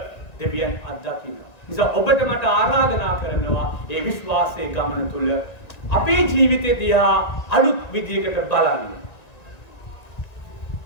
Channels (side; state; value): right; late; 1.9 ms